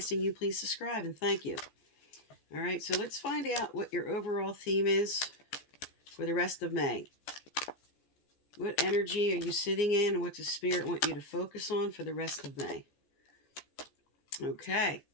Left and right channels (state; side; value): late; right; 14 ms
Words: you please subscribe and thank you. All right, so let's find out what your overall theme is for the rest of May. What energy are you sitting in, and what does Spirit want you to focus on for the rest of May? Okay,